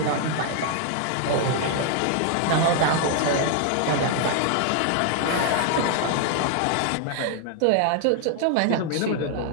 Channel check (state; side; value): different; both; correlation 0.00